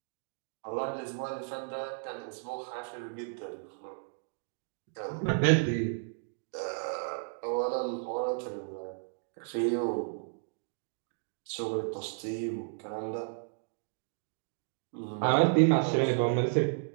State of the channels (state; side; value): silent; left; digital silence